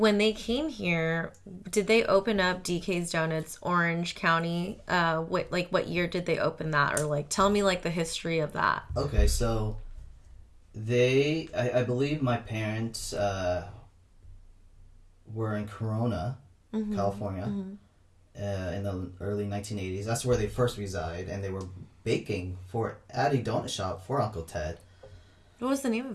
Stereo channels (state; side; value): identical; both; correlation 1.00